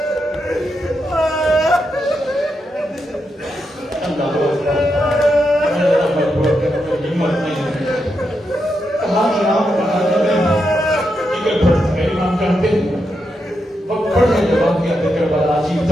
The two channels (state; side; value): normal; both; correlation 0.84